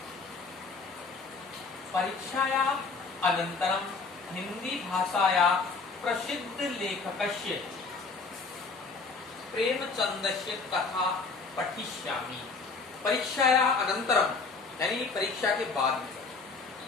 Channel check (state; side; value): quieter; right; 4.4 dB